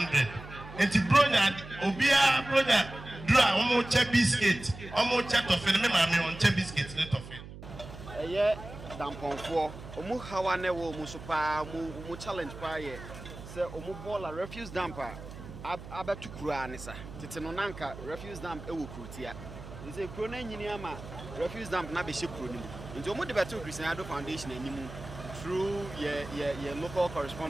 And the brother, Obia brother, draw almost a biscuit, almost a toffee, and mammy on a biscuit, let of it. Yeah, dampon for Omu Hawane wo Musupa, Mu challenge paye. Say Omu Bola refuse damper. Abetu Kuranisa. Titanonanka refuse damp ewu Krutia. Is a crone Yiniama refuse damp Nabishi Kruni. Into Omu Debetu Christian Foundation and through your local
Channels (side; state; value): right; noise; hum, 13 dB below the sound